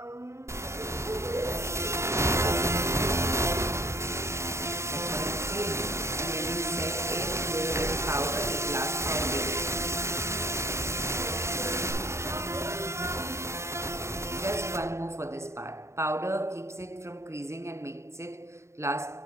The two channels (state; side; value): late; left; 0.14 ms